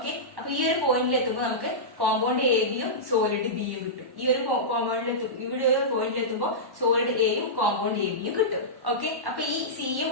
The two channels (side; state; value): left; late; 1.1 ms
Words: അപ്പൊ ഈ ഒരു പോയിന്റിൽ എത്തുമ്പോൾ നമുക്ക് കോമ്പൗണ്ട് എ ബിയും സോളിഡ് ബിയും കിട്ടും. ഈ ഒരു ഇവിടെ ഒരു പോയിന്റിൽ എത്തുമ്പോൾ സോളിഡ് എയും കോമ്പൗണ്ട് എ ബിയും കിട്ടും. ഓക്കെ, അപ്പൊ ഈ സിയും